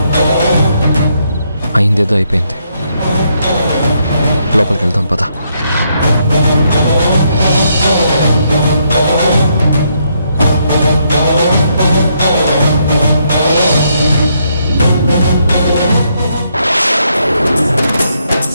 అయిందేదో అయిపోయింది. లోపలికి వెళ్దాం పద.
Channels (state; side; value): inverted; both; correlation -0.75